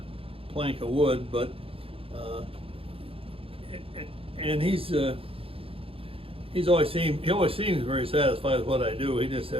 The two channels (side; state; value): left; late; 0.27 ms